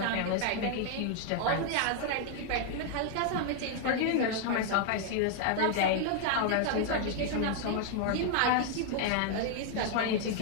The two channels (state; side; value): different; both; correlation 0.00